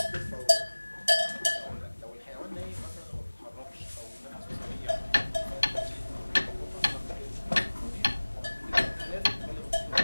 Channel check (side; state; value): both; inverted; correlation -1.00